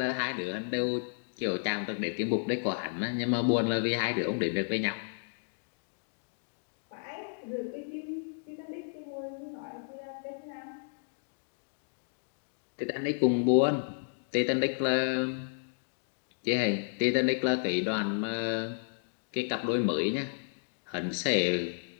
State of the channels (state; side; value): silent; right; digital silence